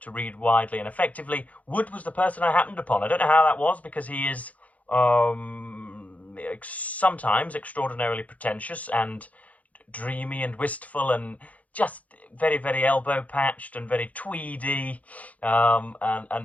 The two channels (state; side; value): late; right; 0.070 ms